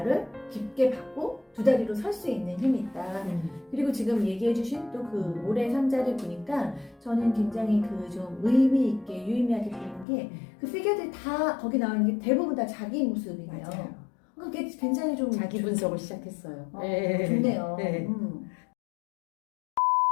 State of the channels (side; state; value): right; drops out; at 10.1 s